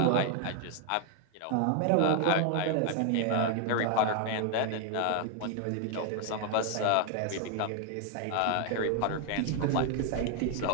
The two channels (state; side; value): different; both; correlation 0.01